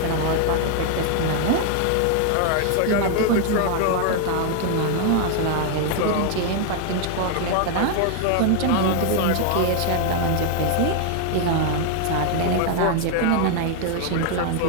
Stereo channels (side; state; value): both; different; correlation 0.00